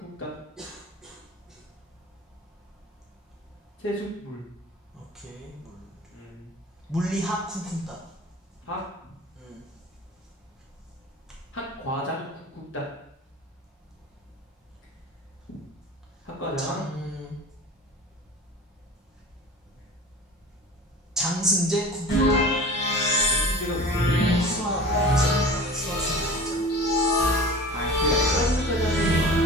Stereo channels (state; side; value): normal; both; correlation 0.39